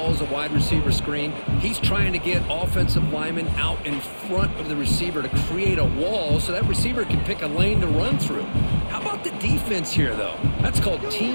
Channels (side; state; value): both; inverted; correlation -1.00